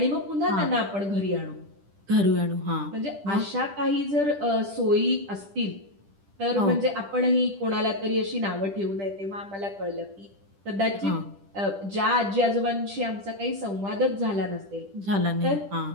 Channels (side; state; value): left; late; 10 ms